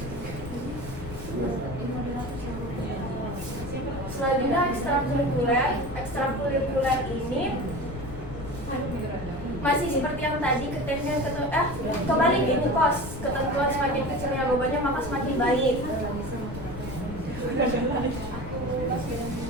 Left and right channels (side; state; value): left; noise; rumble, 10 dB below the sound